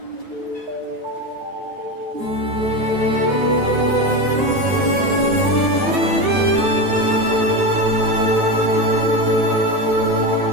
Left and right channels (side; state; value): left; late; 9.4 ms